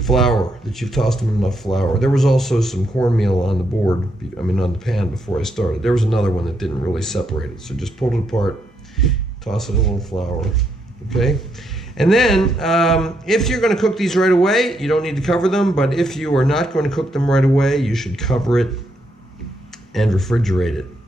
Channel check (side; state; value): both; normal; correlation 0.78